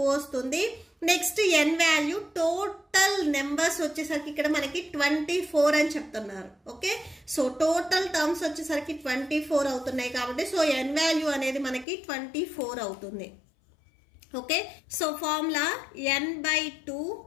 వస్తుంది. నెక్స్ట్ ఎన్ వాల్యూ టోటల్ నెంబర్స్ వచ్చేసరికి ఇక్కడ మనకి 24 అని చెప్తున్నారు. ఓకే, సో టోటల్ టర్మ్స్ వచ్చేసరికి 24 అవుతున్నాయి కాబట్టి సో ఎన్ వాల్యూ అనేది మనకి 24 అవుతుంది. Okay, so formula n by 2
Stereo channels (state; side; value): drops out; right; at 11.9 s